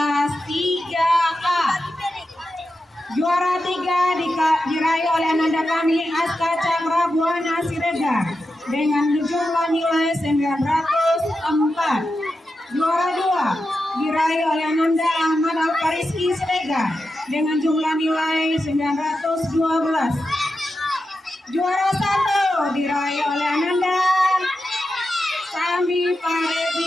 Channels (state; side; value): normal; both; correlation 0.89